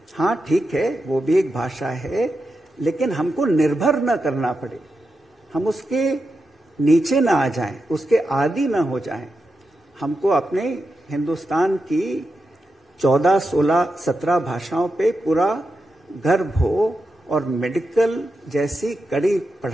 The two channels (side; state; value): both; normal; correlation 0.88